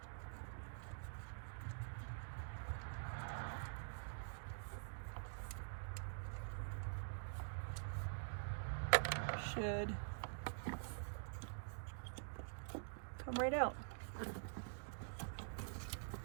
should come right out.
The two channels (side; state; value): left; silent; digital silence